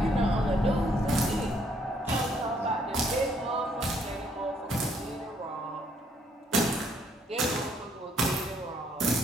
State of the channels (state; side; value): normal; both; correlation 0.68